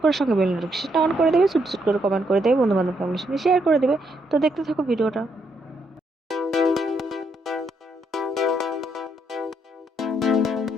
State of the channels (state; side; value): normal; both; correlation 0.75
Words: করে সঙ্গে বেল নোটিফিকেশনটা অন করে দেবে, সুট সুট করে কমেন্ট করে দেবে, বন্ধু বান্ধব ফ্যামিলির সঙ্গে শেয়ার করে দেবে। তো দেখতে থাকো ভিডিওটা।